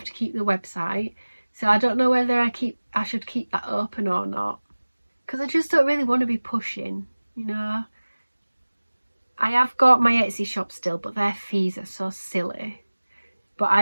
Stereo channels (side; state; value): both; inverted; correlation -1.00